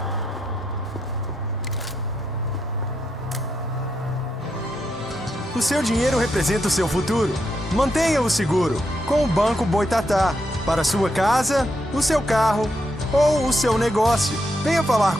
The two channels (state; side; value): normal; both; correlation 0.81